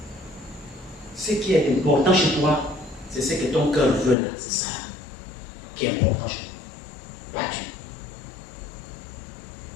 ce qui est important chez toi, c'est ce que ton cœur veut là. C'est ça qui est important chez toi. Pas Dieu.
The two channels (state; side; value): drops out; right; at 4.2 s